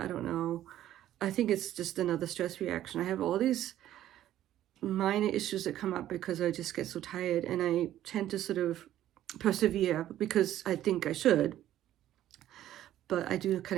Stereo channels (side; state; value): left; quieter; 12.6 dB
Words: don't know. I think it's just another stress reaction. I have all these minor issues that come up because I just get so tired, and I tend to sort of persevere because I think I should. But I do